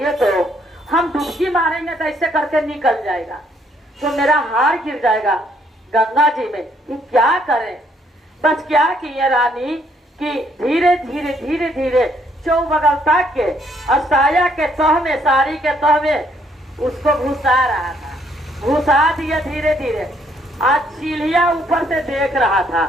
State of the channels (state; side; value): normal; both; correlation 0.68